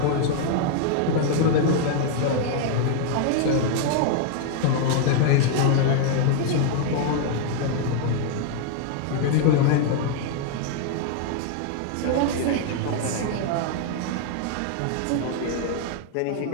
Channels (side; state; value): both; different; correlation 0.00